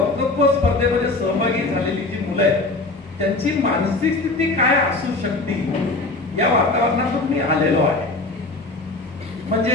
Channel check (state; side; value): quieter; right; 3.2 dB